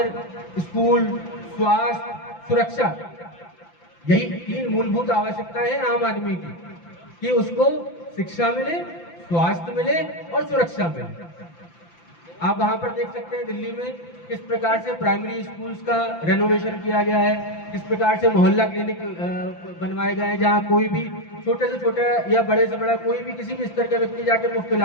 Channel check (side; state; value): right; late; 5.9 ms